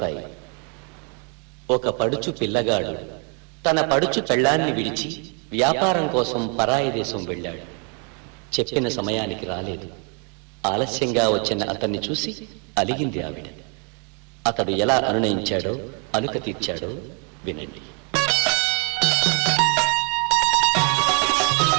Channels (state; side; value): quieter; left; 38.1 dB